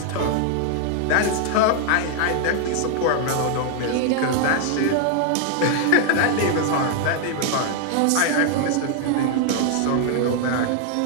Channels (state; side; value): different; both; correlation 0.00